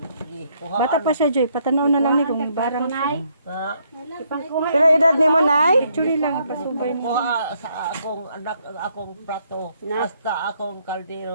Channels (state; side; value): inverted; both; correlation -0.71